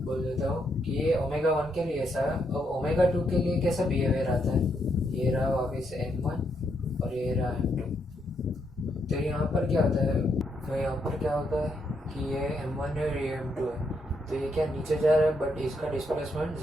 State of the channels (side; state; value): both; normal; correlation 0.77